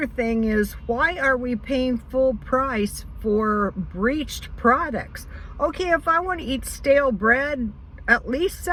thing is, why are we paying full price for breached products? Okay, if I want to eat stale bread, at least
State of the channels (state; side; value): identical; both; correlation 1.00